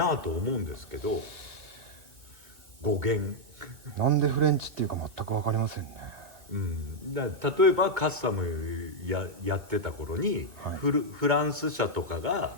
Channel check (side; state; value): left; late; 2.1 ms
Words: あと思うんですけど、語源なんでフレンチっていうか全く分かりませんね。例えばカスタムやってた頃に、フランス車とかが